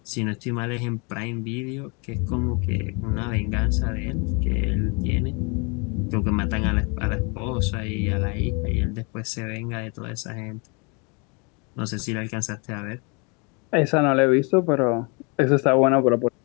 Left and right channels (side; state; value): right; quieter; 32.4 dB